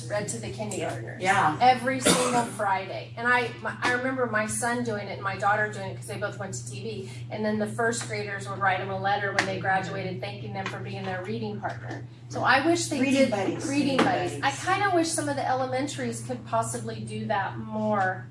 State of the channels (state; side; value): identical; both; correlation 1.00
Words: read to the kindergartners. Yeah. Every single Friday. And I remember my son doing it and my daughter doing it because they both went to TV. And then the 1st graders would write them a letter when they graduated thanking them for being their reading partner. So I wish they did reading buddies. I kind of wish some of the elementaries could possibly do that more.